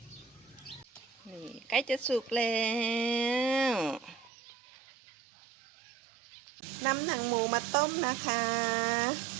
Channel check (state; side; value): drops out; left; at 4.3 s